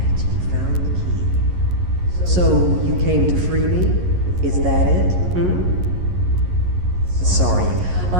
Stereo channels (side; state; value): left; late; 11 ms